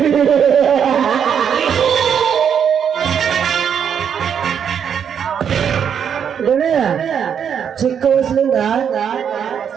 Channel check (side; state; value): left; quieter; 7.9 dB